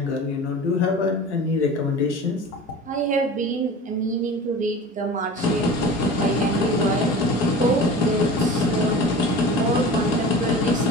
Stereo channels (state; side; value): normal; both; correlation 0.37